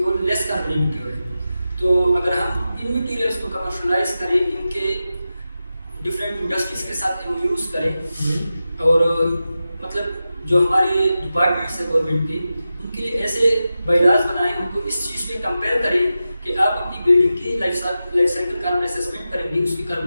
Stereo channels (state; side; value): inverted; both; correlation -0.93